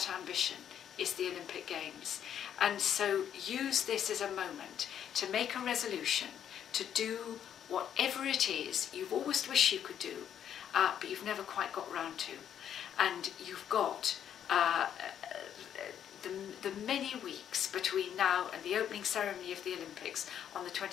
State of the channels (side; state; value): right; quieter; 9.5 dB